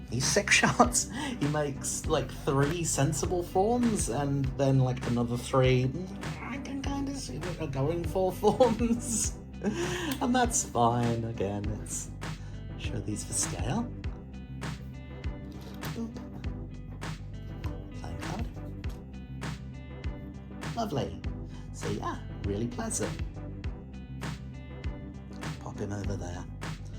Sixshot. He makes, like, 3 sensible forms, and then, like, another 3, I can kind of see what are going for forms. And that's fine. Again, let's show these for scale. Boop. Playing card. Lovely. So yeah, really pleasant. Pop him over there.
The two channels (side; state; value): both; identical; correlation 1.00